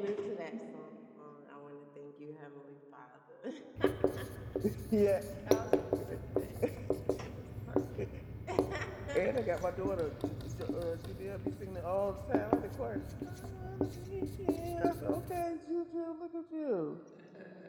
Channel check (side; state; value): both; identical; correlation 1.00